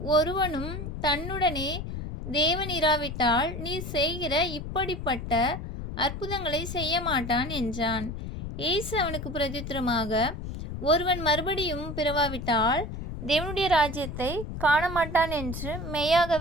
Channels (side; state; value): left; noise; rumble, 7 dB below the sound